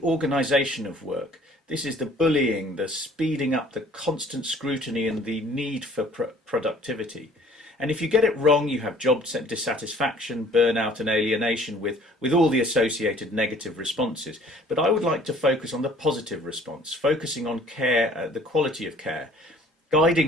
organisation of work. This is the bullying, the speeding up, the constant scrutiny and the need for productivity. And if you get it wrong, you have job dissatisfaction, burnout and alienation with all the associated negative responses. But I would like to focus on the positive response, focusing on care, the quality of care,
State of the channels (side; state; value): both; normal; correlation 0.54